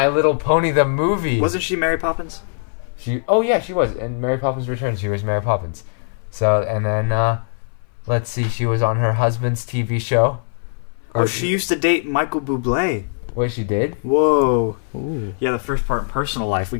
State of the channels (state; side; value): silent; right; 61 dB below the other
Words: Little Pony, the movie. Wasn't she Mary Poppins? She was. In Mary Poppins Returns, she was Mary Poppins. So, and then, let's see, she was on her husband's TV show. Oh, she used to date Michael Bublé. What, she did? Whoa. Ooh. Yeah, the first part, personal life, we